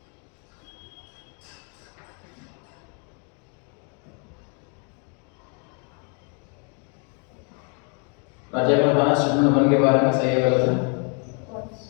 प्राचार्य ने बताना स्टेटमेंट 1 के बारे में सही है गलत है? फॉल्स।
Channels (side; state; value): right; quieter; 38.5 dB